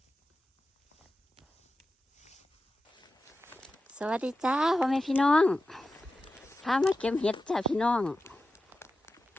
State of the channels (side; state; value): both; normal; correlation 0.93